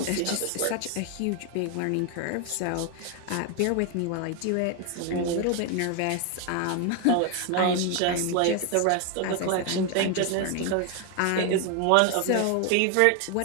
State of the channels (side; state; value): both; different; correlation 0.01